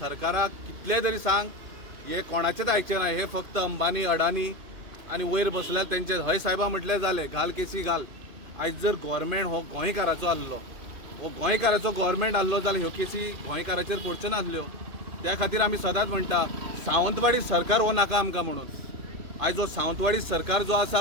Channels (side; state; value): left; late; 2.6 ms